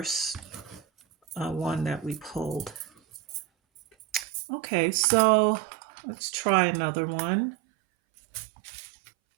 one that we pulled. Okay, so let's try another one.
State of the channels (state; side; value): drops out; left; at 4.2 s